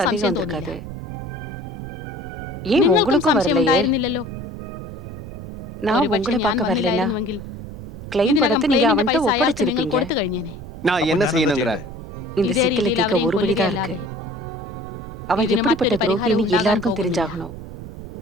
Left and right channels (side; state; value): right; noise; rumble, 13 dB below the sound